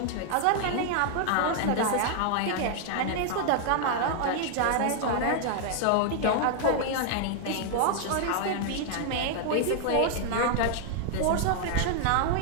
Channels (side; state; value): both; different; correlation 0.00